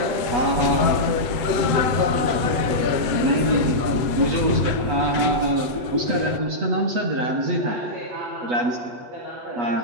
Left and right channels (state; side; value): late; left; 8.3 ms